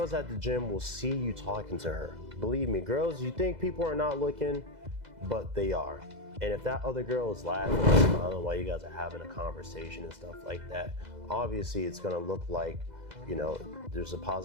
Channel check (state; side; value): late; left; 2.0 ms